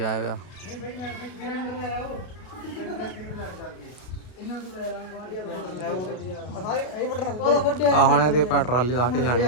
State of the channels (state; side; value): late; right; 32 ms